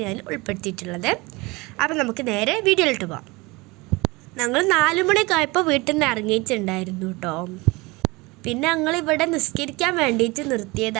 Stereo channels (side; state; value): left; quieter; 23.9 dB